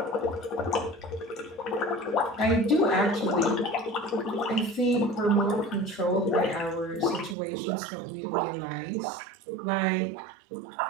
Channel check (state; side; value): drops out; left; at 7.4 s